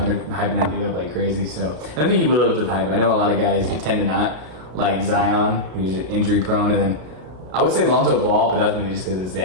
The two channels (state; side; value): late; left; 33 ms